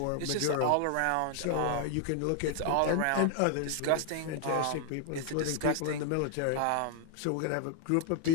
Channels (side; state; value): both; different; correlation 0.00